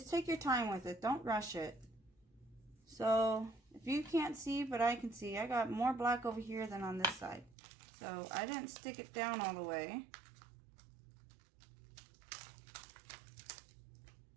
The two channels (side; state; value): left; drops out; at 7.6 s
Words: take your time with it. Don't rush it. So if you can't see, but I can see, I got more black over here than on this side. So I didn't stick it down all the way.